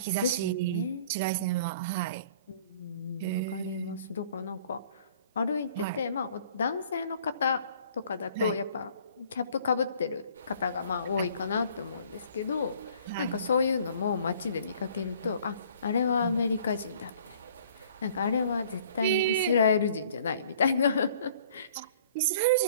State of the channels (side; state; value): both; inverted; correlation -0.54